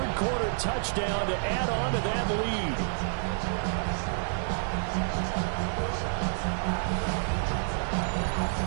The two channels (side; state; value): left; silent; 59 dB below the other